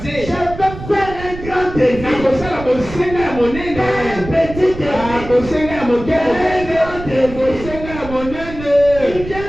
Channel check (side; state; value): right; noise; rumble, 12 dB below the sound